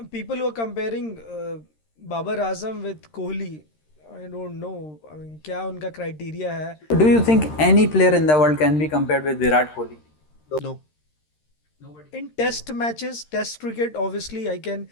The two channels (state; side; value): late; right; 13 ms